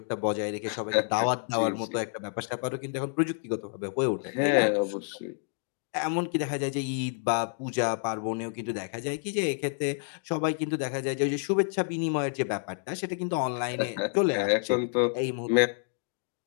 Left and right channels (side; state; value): right; silent; 59 dB below the other